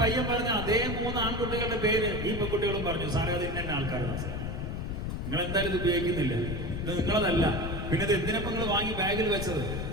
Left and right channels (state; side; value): noise; left; rumble, 4 dB below the sound